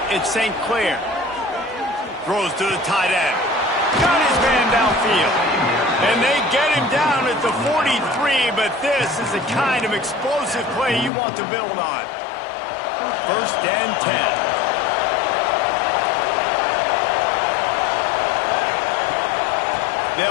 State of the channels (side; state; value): right; drops out; at 11.1 s